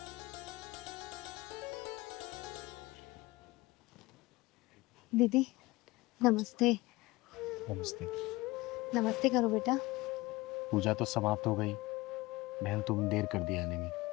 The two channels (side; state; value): right; quieter; 21.0 dB